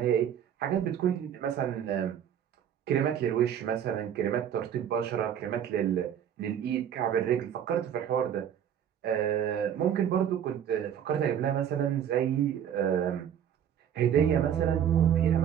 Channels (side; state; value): left; quieter; 9.3 dB